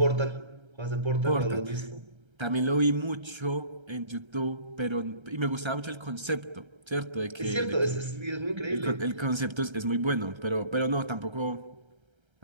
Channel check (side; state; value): left; late; 1.3 ms